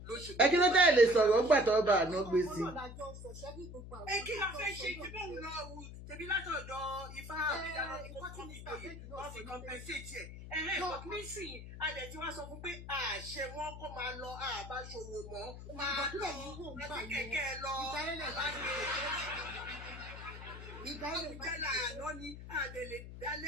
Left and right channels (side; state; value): left; noise; hum, 12 dB below the sound